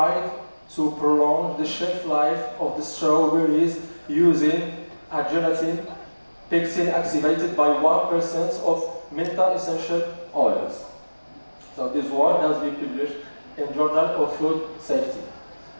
to prolong the shelf life of the strawberries using a gelatin pectin activated by 1% of menta essential oils. So this work has been published in Journal of Food Safety.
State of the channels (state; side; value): inverted; both; correlation -1.00